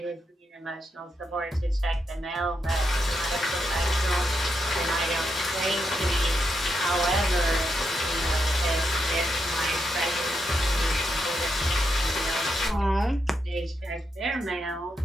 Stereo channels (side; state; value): both; normal; correlation 0.82